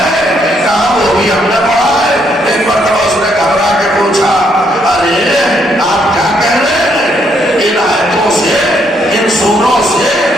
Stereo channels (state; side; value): normal; both; correlation 0.72